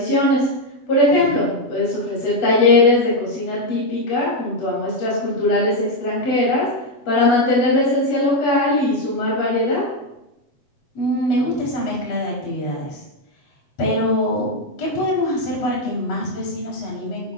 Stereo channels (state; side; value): late; right; 7.7 ms